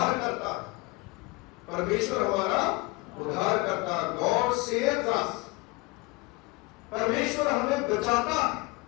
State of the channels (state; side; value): quieter; right; 24.0 dB